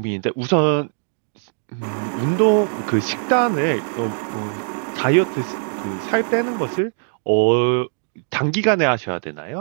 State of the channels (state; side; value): silent; left; digital silence